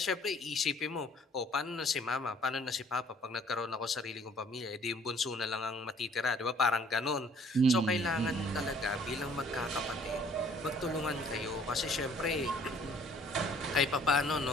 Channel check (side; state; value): both; normal; correlation 0.58